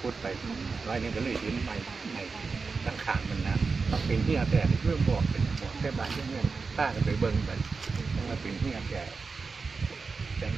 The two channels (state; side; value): quieter; left; 4.6 dB